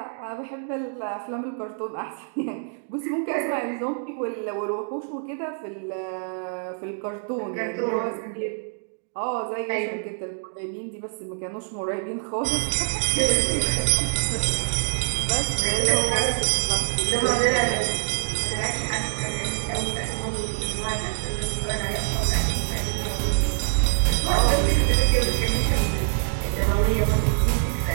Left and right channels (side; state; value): left; silent; digital silence